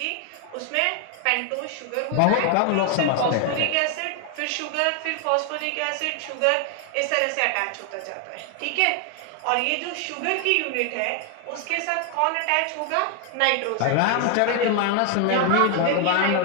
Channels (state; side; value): different; both; correlation 0.01